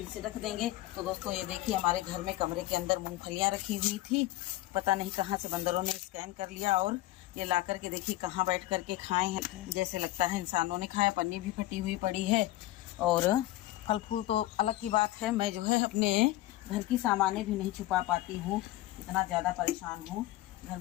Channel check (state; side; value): quieter; right; 16.5 dB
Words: से रख देंगे। तो दोस्तों ये देखिए हमारे घर में कमरे के अंदर मूंगफलियाँ रखी हुई थी, पता नहीं कहाँ से बंदरों ने स्कैन कर लिया और ये ला करके देखिए कहाँ बैठ करके खाए हैं, जैसे लगता है इंसानों ने खाया। पन्नी भी फटी हुई पड़ी है और फल फूल तो अलग की बात है। मैं जो है अपने घर की सामानें भी नहीं छुपा पाती हूँ, इतना ज़्यादा परेशान हूँ। घर